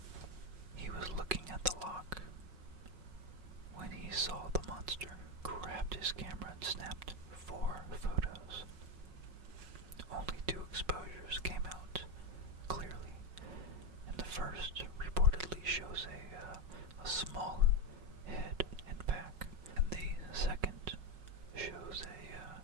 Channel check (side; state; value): left; late; 5.4 ms